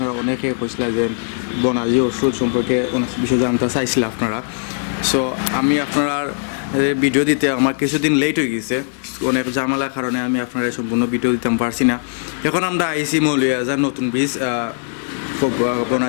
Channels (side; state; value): right; silent; digital silence